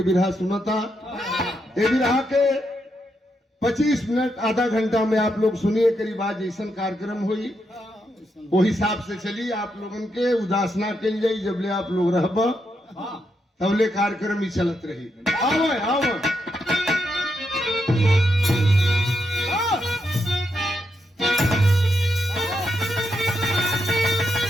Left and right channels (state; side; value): normal; both; correlation 0.82